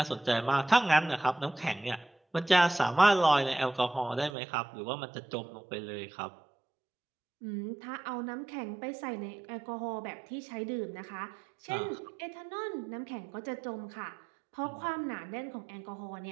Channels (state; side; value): drops out; left; at 4.3 s